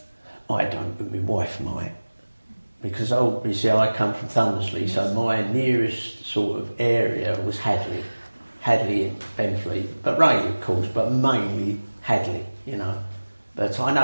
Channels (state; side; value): inverted; both; correlation -1.00